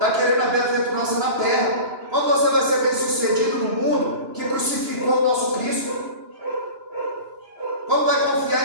querendo a bem-aventurança na terra. Quando você vai ser bem sucedido no mundo que crucificou o nosso Cristo? Quando vai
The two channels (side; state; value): left; late; 2.9 ms